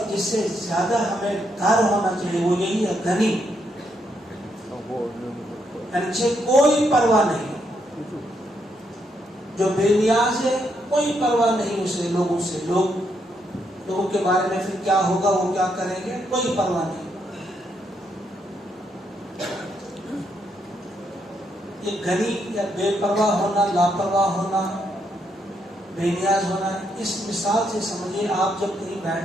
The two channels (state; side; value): normal; both; correlation 0.77